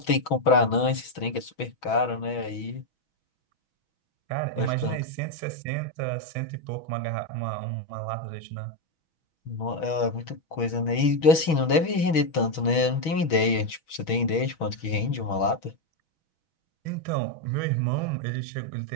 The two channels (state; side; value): late; right; 6.2 ms